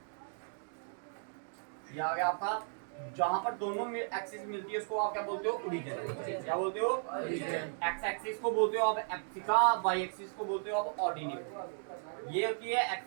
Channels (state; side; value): silent; left; digital silence